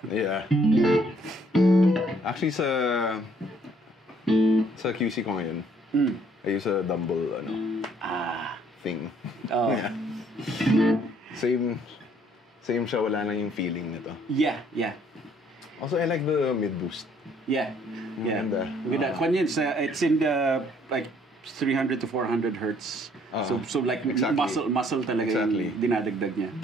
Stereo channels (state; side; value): normal; both; correlation 0.63